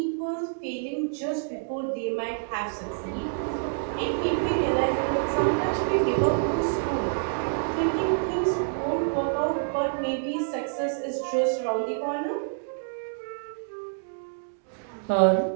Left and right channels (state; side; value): silent; left; digital silence